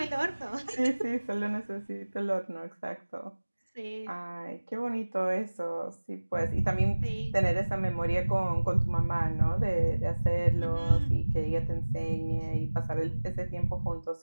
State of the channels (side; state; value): both; inverted; correlation -1.00